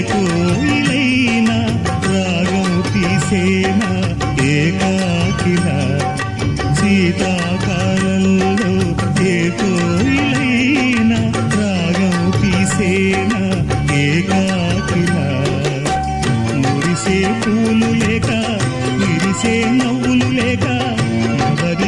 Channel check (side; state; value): both; identical; correlation 1.00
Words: కోయిలైనా రాగం తీసేనా ఏకాకిలా శీతాకాలంలో ఏ కోయిలైనా రాగం తీసేనా ఏకాకిలా మురిసే పూలు లేక విరిసే నవ్వులు లేక